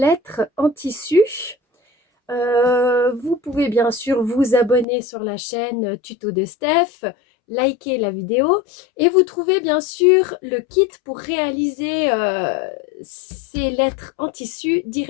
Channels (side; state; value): right; drops out; at 4.9 s